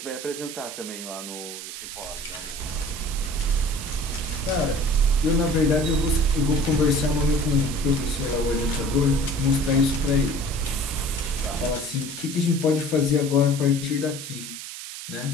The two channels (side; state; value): right; noise; hiss, 10 dB below the sound